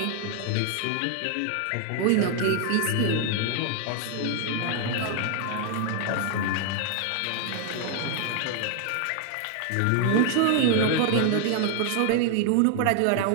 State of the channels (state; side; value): different; both; correlation 0.00